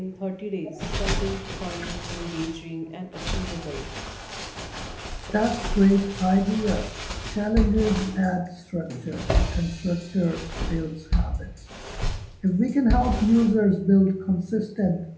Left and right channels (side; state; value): both; identical; correlation 1.00